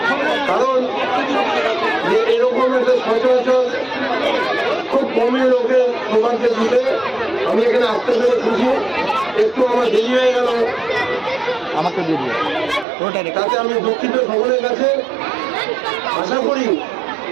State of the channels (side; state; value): left; drops out; at 12.9 s